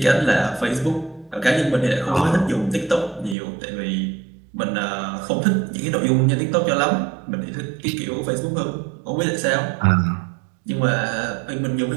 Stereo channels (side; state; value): left; drops out; at 3.4 s